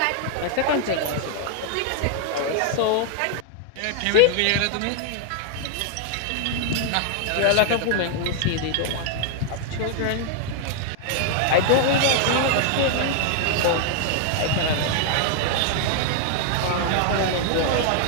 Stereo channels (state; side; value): different; both; correlation 0.00